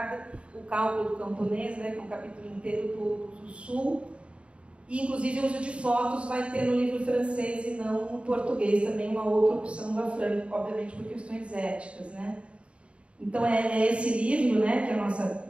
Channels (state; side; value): late; left; 0.059 ms